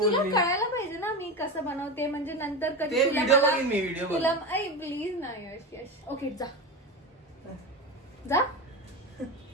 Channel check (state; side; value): normal; both; correlation 0.21